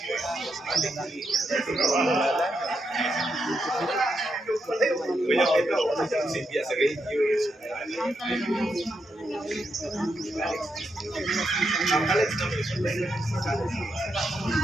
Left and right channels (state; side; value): normal; both; correlation 0.82